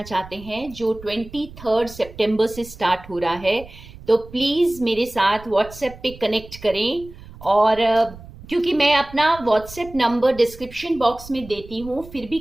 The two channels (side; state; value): right; noise; rumble, 18 dB below the sound